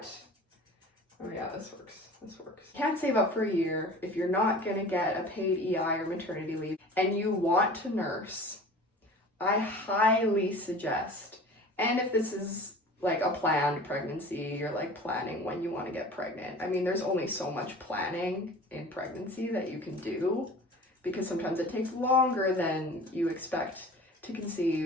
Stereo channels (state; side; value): normal; both; correlation 0.41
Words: oh yeah, this works. Can't save up for a year if you're not going to get a paid EI or maternity leave and you want to nurse, I highly suggest, and if this is like a planned pregnancy, you're like planning when you want to get pregnant. I mean, there's only so much planning in pregnancy that you can do because sometimes it takes longer than you expect to